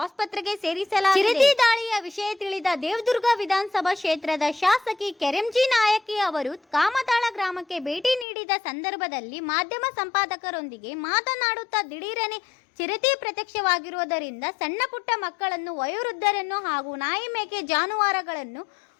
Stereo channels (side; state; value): right; drops out; at 8.2 s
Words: ಸೇರಿಸಲಾಗಿದೆ. ಚಿರತೆ ದಾಳಿಯ ವಿಷಯ ತಿಳಿದ ದೇವದುರ್ಗ ವಿಧಾನಸಭಾ ಕ್ಷೇತ್ರದ ಶಾಸಕಿ ಕೆರೆಂಜಿ ನಾಯಕಿ ಅವರು ಕಾಮತಾಳ ಗ್ರಾಮಕ್ಕೆ ಭೇಟಿ ನೀಡಿದ ಸಂದರ್ಭದಲ್ಲಿ ಮಾಧ್ಯಮ ಸಂಪಾದಕರೊಂದಿಗೆ ಮಾತನಾಡುತ್ತಾ ದಿಢೀರನೆ ಚಿರತೆ ಪ್ರತ್ಯಕ್ಷವಾಗಿರುವುದರಿಂದ ಸಣ್ಣ ಪುಟ್ಟ ಮಕ್ಕಳನ್ನು, ವಯೋವೃದ್ಧರನ್ನು ಹಾಗೂ ನಾಯಿ ಮೇಕೆ ಜಾನುವಾರುಗಳನ್ನು